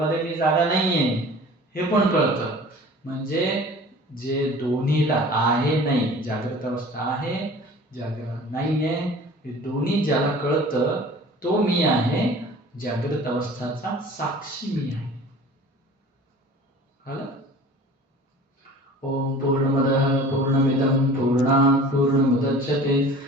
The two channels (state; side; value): normal; both; correlation 0.44